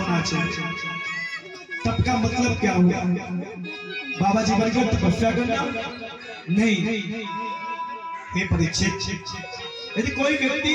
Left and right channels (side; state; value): both; identical; correlation 1.00